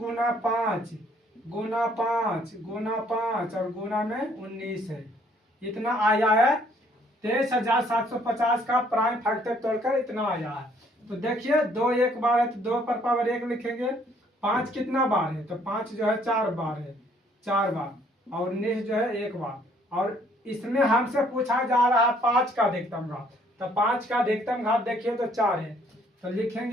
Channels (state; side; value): normal; both; correlation 0.63